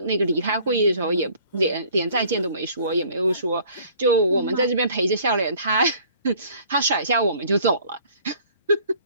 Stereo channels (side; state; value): both; inverted; correlation -0.54